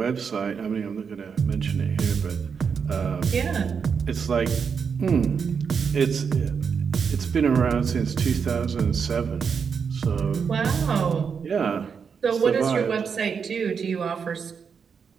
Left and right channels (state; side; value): quieter; left; 6.3 dB